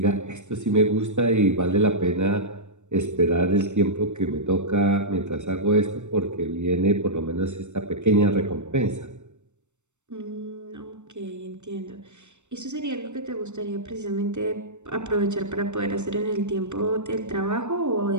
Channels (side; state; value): left; late; 0.84 ms